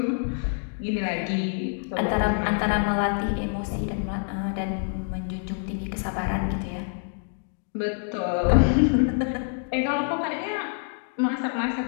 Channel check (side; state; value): right; silent; 58 dB below the other